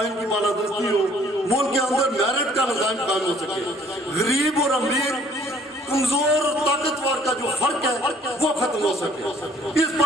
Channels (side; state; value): both; normal; correlation 0.59